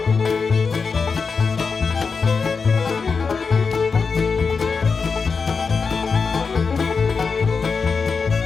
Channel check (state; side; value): quieter; right; 5.1 dB